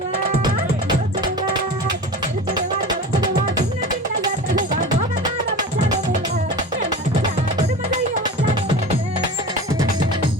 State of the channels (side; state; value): both; normal; correlation 0.33